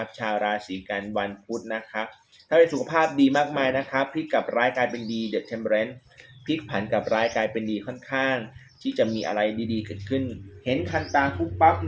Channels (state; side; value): identical; both; correlation 1.00